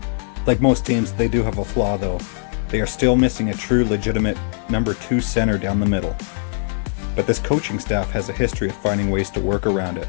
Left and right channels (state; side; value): silent; right; 58 dB below the other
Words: Like most teams, they do have a flaw though. They are still missing a true, legitimate number 2 center down the middle. But this coaching staff has a history of finding ways to work around it.